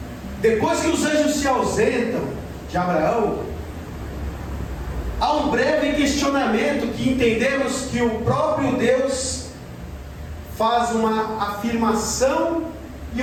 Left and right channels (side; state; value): both; identical; correlation 1.00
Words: Depois que os anjos se ausentam de Abraão, há um breve questionamento que entendemos que o próprio Deus faz uma afirmação e